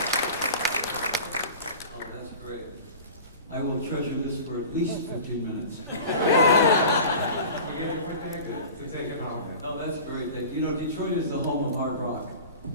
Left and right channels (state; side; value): inverted; both; correlation -0.37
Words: that's great. I will treasure this for at least 15 minutes. We get it with that good to take it home. Oh, that's great. You know, Detroit is the home of hard rock.